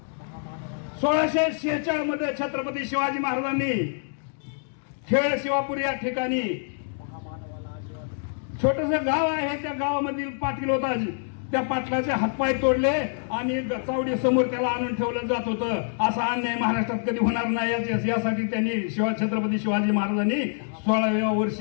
1646 मध्ये छत्रपती शिवाजी महाराजांनी खेळ शिवापूर या ठिकाणी छोटस गाव आहे, त्या गावामधील पाटील होता, त्या पाटलाचे हातपाय तोडले आणि चावडी समोर त्याला आणून ठेवलं जात होतं. असा अन्याय महाराष्ट्रात कधी होणार नाही यासाठी त्यांनी छत्रपती शिवाजी महाराजांनी 16व्या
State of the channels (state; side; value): silent; right; digital silence